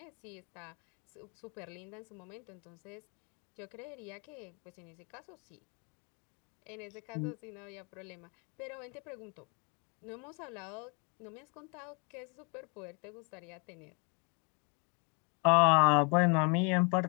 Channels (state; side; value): quieter; right; 34.2 dB